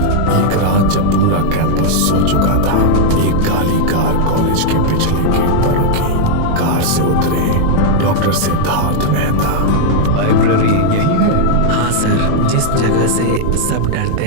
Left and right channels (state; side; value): different; both; correlation -0.01